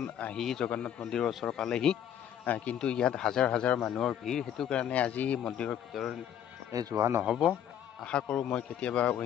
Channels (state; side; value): quieter; right; 9.9 dB